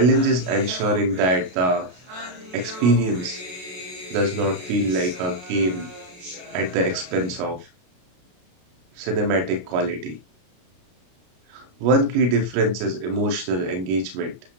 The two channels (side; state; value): left; late; 33 ms